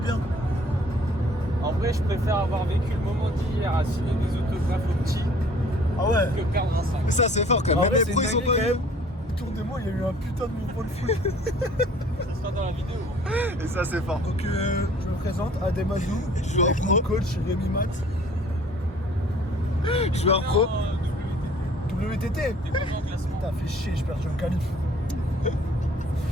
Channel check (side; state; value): both; normal; correlation 0.54